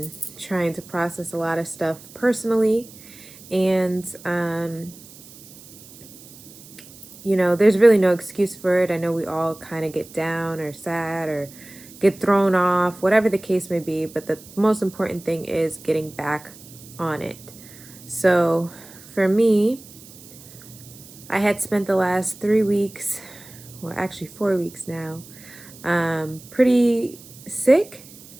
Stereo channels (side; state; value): right; noise; hiss, 20 dB below the sound